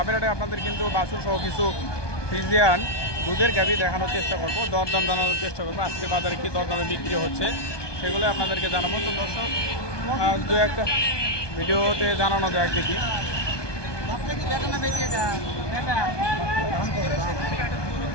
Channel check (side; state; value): right; late; 1.2 ms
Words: হাটে আপনাদের কিন্তু বাছুর সহ কিছু ফ্রিজিয়ান দুধের গাভী দেখানোর চেষ্টা করবো, দরদাম জানানোর চেষ্টা করবো। আজকে বাজারে কি দরদামে বিক্রি হচ্ছে সেগুলো আপনাদেরকে জানাবো। তো দর্শক দু একটা ভিডিওতে জানানো যায়, দেখি